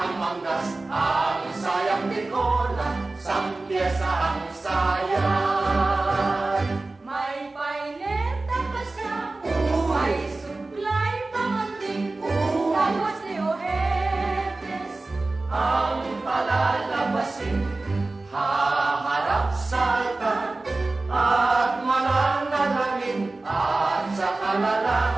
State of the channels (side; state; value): left; quieter; 3.2 dB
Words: manggas, ang sayang bikola, sampiesa ang sayan. May paineta pa siya, may suklay pamanding, tapos ni Ojetes Ang palalabasin, haharap sa altar, at mananalangin, at sa